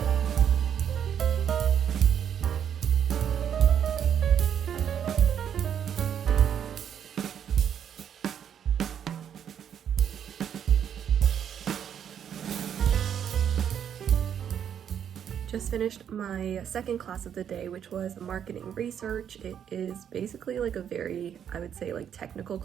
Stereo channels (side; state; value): left; quieter; 8.8 dB